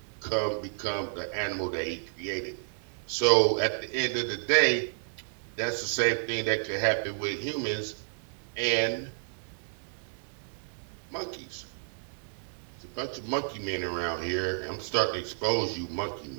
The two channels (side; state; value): left; silent; 57 dB below the other